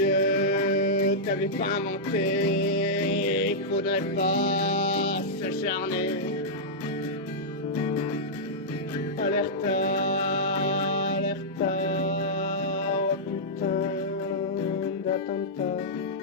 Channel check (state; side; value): normal; both; correlation -0.09